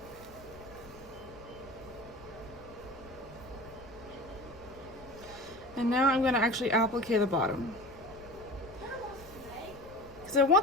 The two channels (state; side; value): noise; left; rumble, 20 dB below the sound